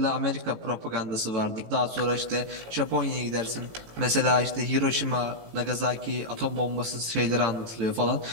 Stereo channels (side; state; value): left; late; 18 ms